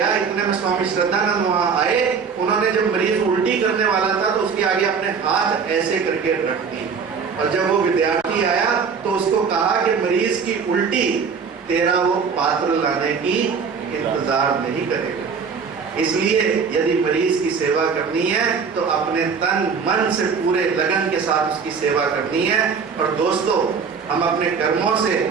इतने में स्वामी श्रद्धानंद वहां आए। उन्होंने जब मरीज उल्टी करने वाला था तो उसके आगे अपने हाथ ऐसे करके रख दिए, और जब वो विद्यार्थी आया तो उसको कहा कि मरीज की उल्टी तेरा वो पात्र लाने की इंतजार नहीं करेगा। इसलिए यदि मरीज की सेवा करनी है तो अपने तन मन से पूरे लगन के साथ उसकी सेवा करनी है। और दोस्तों, हम अपने कर्मों से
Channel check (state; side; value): quieter; left; 5.9 dB